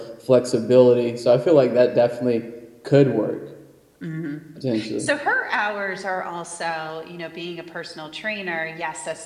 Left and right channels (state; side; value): identical; both; correlation 1.00